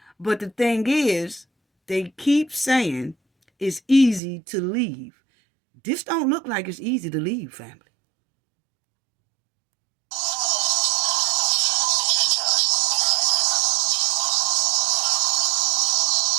But the thing is, they keep saying it's easy to leave. This don't look like it's easy to leave, family.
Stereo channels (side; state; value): left; drops out; at 4.2 s